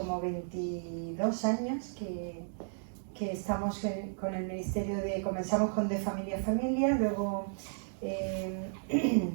22 años que estamos con el ministerio comenzamos con De Familia a Familia, luego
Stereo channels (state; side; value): silent; left; digital silence